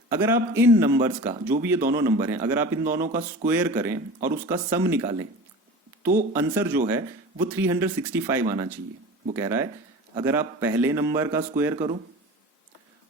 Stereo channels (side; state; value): both; normal; correlation 0.35